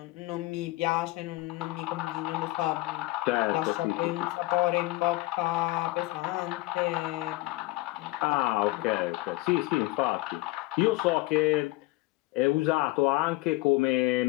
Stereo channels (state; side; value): quieter; right; 20.1 dB